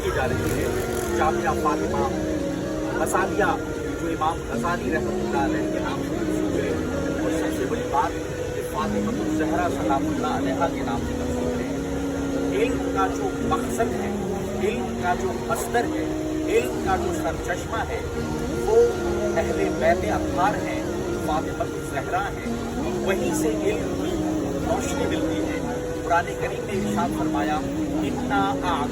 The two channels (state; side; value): identical; both; correlation 1.00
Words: की जा रही है। जामिया फातिमा गजालिया जो इमाम गजाली रहमतुल्लाह अलैह के नाम से मशहूर है, और सबसे बड़ी बात फातिमतुल ज़हरा सलामुल्लाह अलैहा के नाम से मशहूर है। इल्म का जो मकसद है, इल्म का जो मस्दर है, इल्म का जो सरचश्मा है, वो अहले बैत अत्हार हैं, फातिमतुल ज़हरा हैं। वहीं से इल्म की रोशनी मिलती है। कुरान करीम ने इरशाद फरमाया, इन्ना